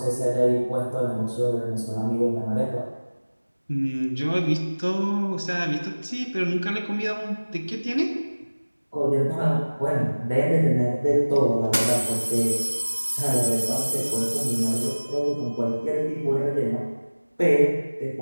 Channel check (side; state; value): both; inverted; correlation -1.00